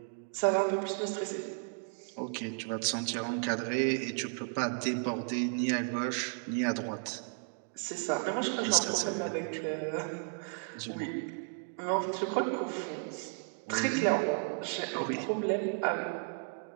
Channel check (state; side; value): silent; left; 55 dB below the other